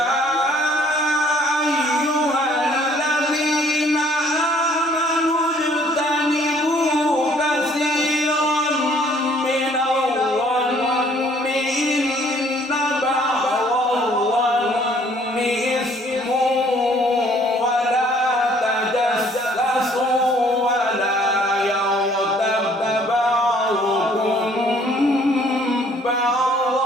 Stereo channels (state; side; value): normal; both; correlation 0.60